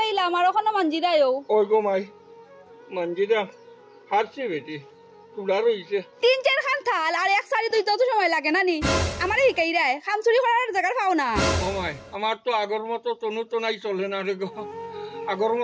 আর ওখানে মানজি দেয়ও ওই গো মাই মানজিদা হারছে বেটি তুলার হইছে 3-4 খান থাল আর এক সারি দুই তো সময় লাগে নানি আমারে হিকাই রায় খাম চুরি করার জায়গা পাও না ও মাই আমার তো আগর মতো তনু তনাই চলে না রে গো আগর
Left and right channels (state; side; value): identical; both; correlation 1.00